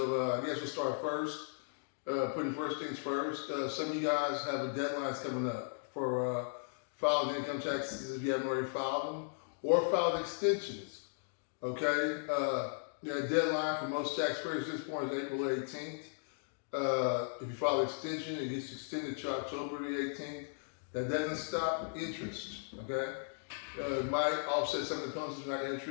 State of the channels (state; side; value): silent; right; digital silence